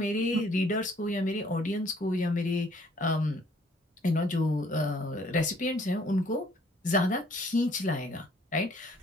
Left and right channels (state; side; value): normal; both; correlation 0.61